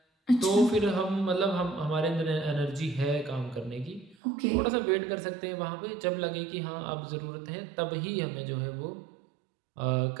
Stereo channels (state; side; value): drops out; left; at 4.2 s